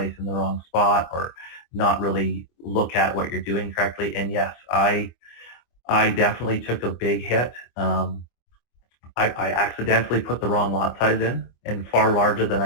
in the wrong spot or not really look at what you're doing correctly. And yes, I definitely took a big hit. I accidentally put the wrong lot size in and far larger than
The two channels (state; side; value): late; right; 24 ms